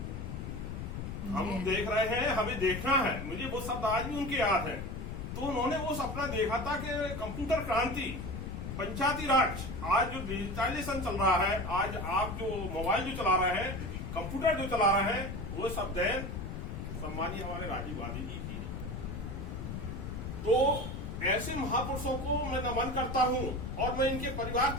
हम देख रहे हैं, हमें देखना है। मुझे वो शब्द आज भी उनके याद है। तो उन्होंने वो सपना देखा था कि कंप्यूटर क्रांति, पंचायती राज, आज जो डिजिटलाइजेशन चल रहा है, आज आप जो मोबाइल जो चला रहे हैं, कंप्यूटर जो चला रहे हैं, वो सब देन सम्मानीय हमारे राजीव गांधी जी की है। तो ऐसे महापुरुषों को मैं नमन करता हूं और मैं इनके परिवार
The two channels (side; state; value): left; noise; rumble, 6 dB below the sound